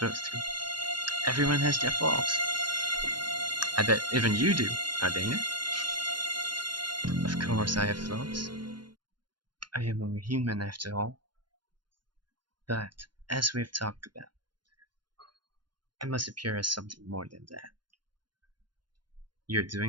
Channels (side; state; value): left; late; 0.71 ms